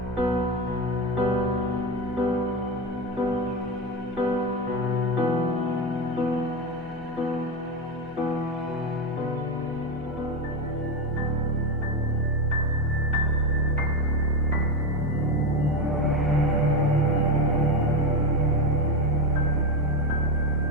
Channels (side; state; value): both; normal; correlation 0.14